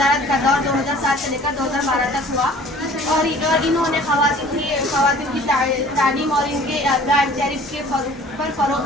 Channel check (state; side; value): normal; both; correlation 0.49